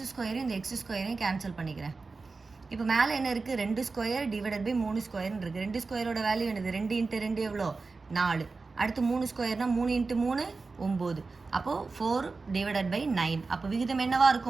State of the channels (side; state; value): left; quieter; 4.1 dB